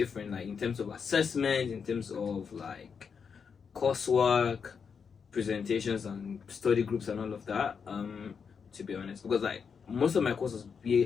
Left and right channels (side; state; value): right; quieter; 6.2 dB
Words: in terms of assessment, in terms of coursework, presentations and study groups and all of that, to be honest, because most of my courses